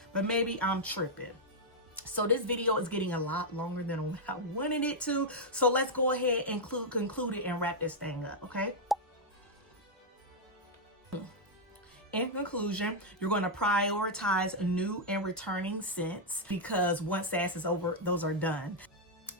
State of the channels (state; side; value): normal; both; correlation -0.03